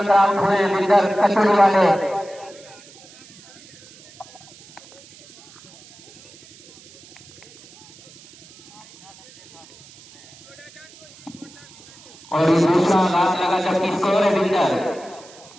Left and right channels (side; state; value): right; noise; hiss, 23 dB below the sound